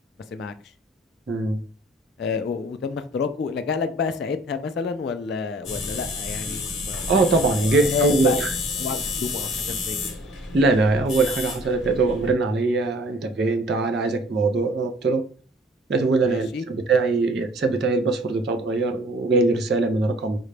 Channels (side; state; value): both; normal; correlation 0.53